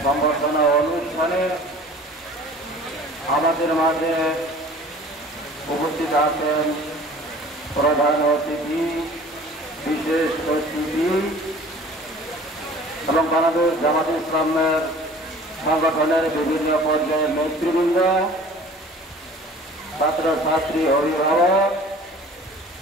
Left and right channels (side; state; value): both; normal; correlation 0.46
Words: সম্বর্ধনা অনুষ্ঠানে আমাদের মাঝে উপস্থিত আছেন প্রধান অতিথি, বিশেষ অতিথি এবং বাংলাদেশ জামাত ইসলামের সংগঠনের বিভিন্ন পর্যায়ের নেতৃবৃন্দ, ছাত্রছাত্রী, অভিভাবক,